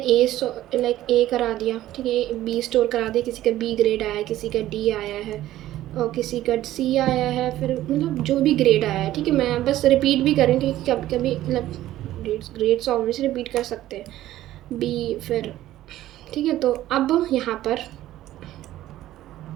लाइक ए करा दिया। ठीक है, बी स्टोर करा दिया, किसी का बी ग्रेड आया है, किसी का डी आया है और किसी का सी आया है, फिर मतलब जो भी ग्रेड आया है। ठीक है, मैं बस रिपीट भी करूँ क्योंकि कभी कभी मतलब ग्रेड्स ऑब्वियसली रिपीट कर सकते हैं, बी फिर। ठीक है, तो अब यहाँ पर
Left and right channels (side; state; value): left; quieter; 14.2 dB